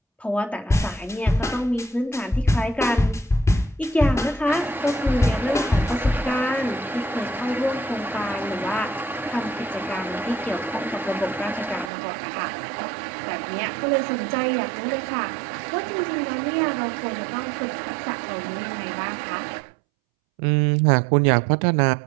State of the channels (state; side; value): drops out; left; at 11.9 s